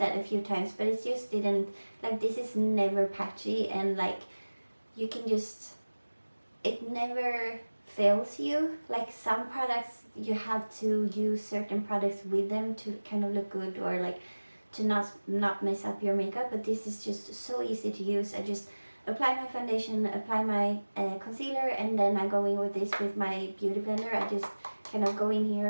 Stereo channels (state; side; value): inverted; both; correlation -1.00